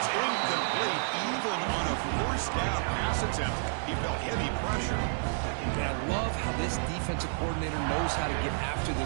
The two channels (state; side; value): silent; left; 58 dB below the other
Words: incomplete. Even on a 1st down pass attempt, he felt heavy pressure. And I love how this defensive coordinator knows how to get after